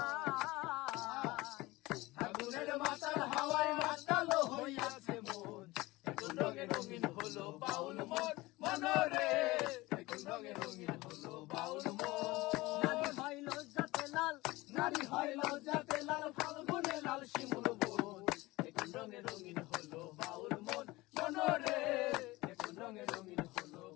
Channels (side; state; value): right; quieter; 20.6 dB